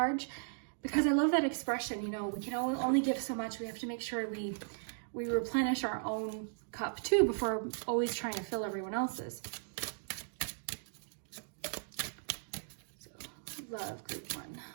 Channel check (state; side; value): silent; left; digital silence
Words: because I love that expression. You know, we can only give so much. We have to make sure we replenish our own cup too before always trying to fill everyone else's. So love group 1.